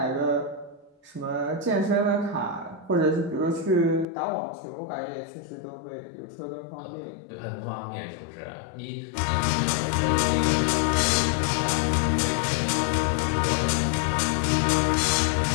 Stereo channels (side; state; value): right; drops out; at 4.0 s